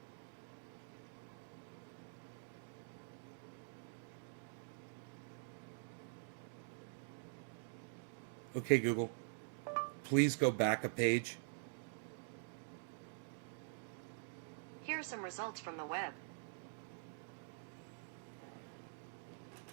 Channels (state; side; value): silent; left; digital silence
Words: Okay, Google. Please go back a page. Here are some results from the web.